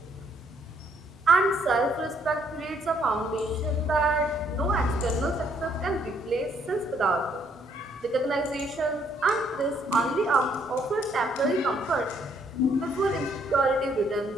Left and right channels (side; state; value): both; normal; correlation 0.69